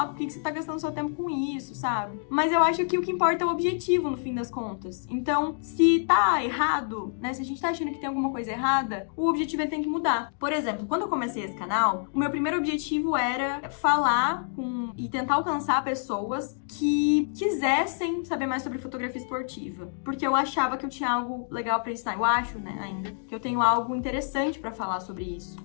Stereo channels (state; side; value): silent; right; digital silence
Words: por que você tá gastando seu tempo com isso, sabe? Mas eu acho que o que importa é o objetivo, no fim das contas. Então, se tá errado, né, se a gente tá achando que tem alguma coisa errada, o objetivo ele tem que mudar. Por exemplo, quando eu comecei esse canal, o meu primeiro objetivo era falar e tentar alcançar pessoas que quisessem saber mais sobre fotografia esportiva, porque eu achava que eu tinha algo legal pra ensinar. Eu acho, né, ainda, que eu tenho algo interessante pra falar sobre isso.